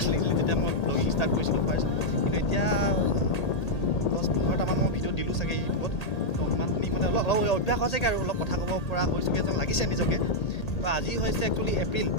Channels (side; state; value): right; late; 1.8 ms